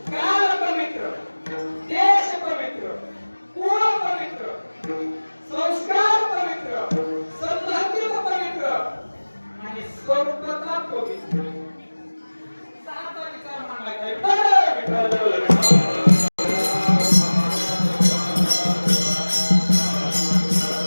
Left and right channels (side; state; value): both; inverted; correlation -1.00